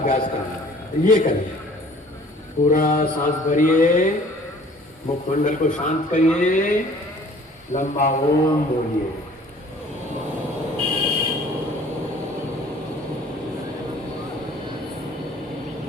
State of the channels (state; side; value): normal; both; correlation 0.52